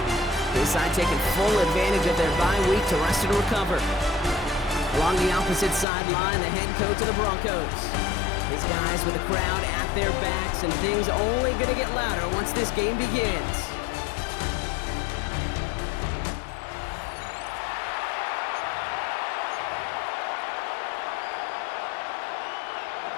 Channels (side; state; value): right; drops out; at 5.9 s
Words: His side taking full advantage of their bye week to rest and recover. Along the opposite sideline, the head coach of the Broncos. His guys with the crowd at their backs, and things only going to get louder once this game begins.